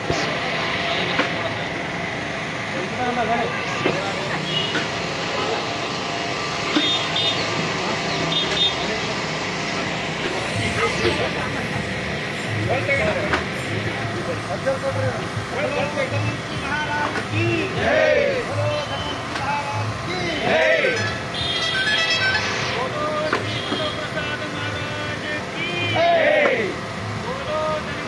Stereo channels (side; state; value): both; identical; correlation 1.00